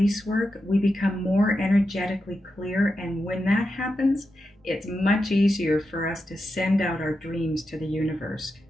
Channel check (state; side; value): normal; both; correlation 0.88